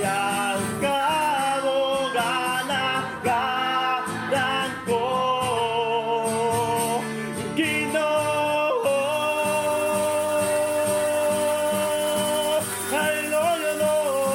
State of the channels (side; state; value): both; identical; correlation 1.00